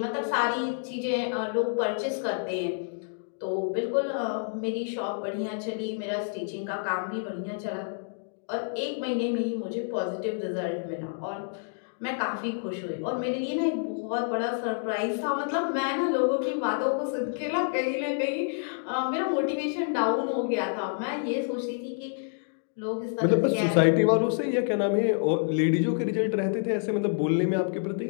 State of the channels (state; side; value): silent; right; digital silence